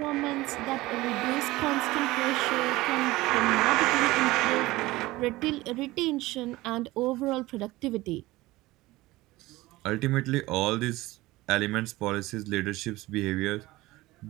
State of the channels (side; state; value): left; quieter; 19.0 dB